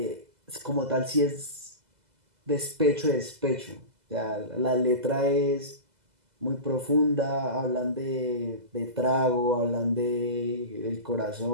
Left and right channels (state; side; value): late; left; 2.0 ms